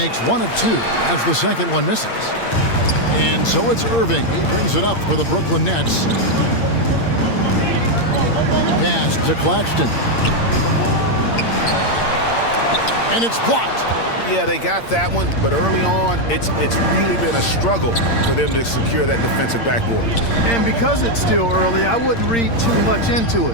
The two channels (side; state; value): right; late; 8.7 ms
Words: 1 of 2 as the second one misses. And so it's Irving. He brings it up for the Brooklyn Nets. Pass to Claxton. And it's blocked. Yeah, they got that one, but early on, it's really been a struggle for them to secure that defensive backboard. And because it's still early, I wouldn't read too much into